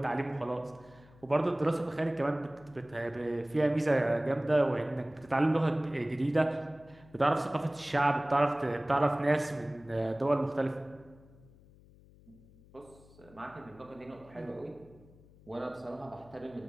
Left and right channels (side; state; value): left; noise; hum, 25 dB below the sound